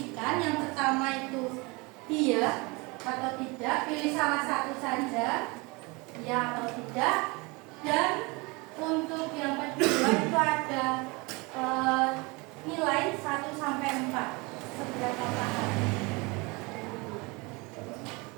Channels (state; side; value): quieter; left; 26.6 dB